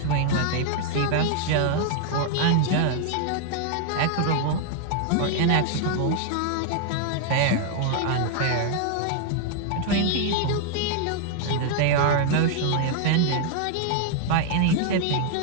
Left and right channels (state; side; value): different; both; correlation 0.00